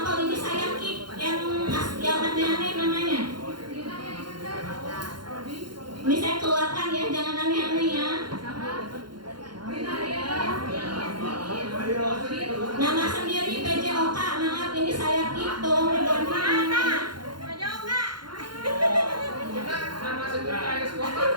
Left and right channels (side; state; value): left; late; 0.72 ms